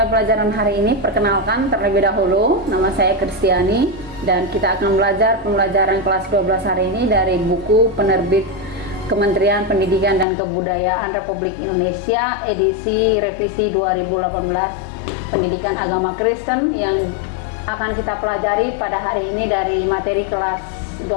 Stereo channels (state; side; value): drops out; right; at 10.2 s